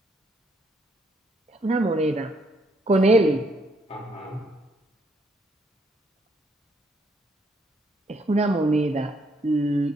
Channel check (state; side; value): normal; both; correlation 0.71